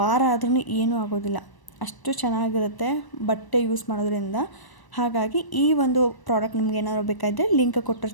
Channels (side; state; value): right; late; 1.0 ms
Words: ಆದ್ರೂ ಏನೂ ಆಗೋದಿಲ್ಲ, ಅಷ್ಟು ಚೆನ್ನಾಗಿರುತ್ತೆ ಬಟ್ಟೆ ಯೂಸ್ ಮಾಡೋದ್ರಿಂದ. ಹಾಗಾಗಿ ಈ ಒಂದು ಪ್ರಾಡಕ್ಟ್ ನಿಮ್ಗೆ ಏನಾದರೂ ಬೇಕಾದರೆ ಲಿಂಕ್